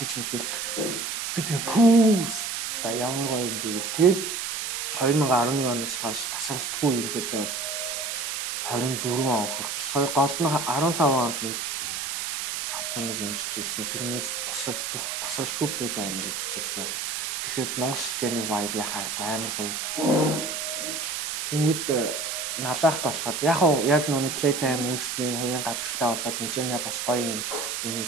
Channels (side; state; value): right; noise; hiss, 3 dB below the sound